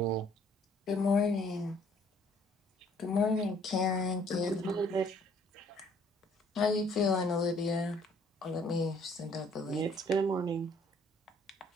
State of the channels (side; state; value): both; normal; correlation 0.61